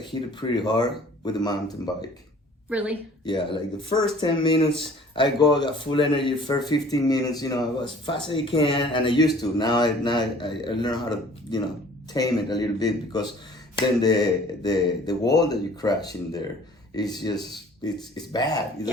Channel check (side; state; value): both; normal; correlation 0.51